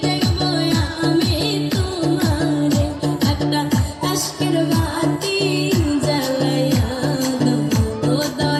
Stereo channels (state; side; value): identical; both; correlation 1.00